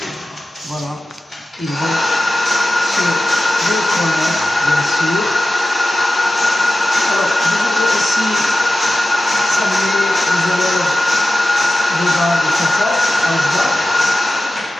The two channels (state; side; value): normal; both; correlation 0.94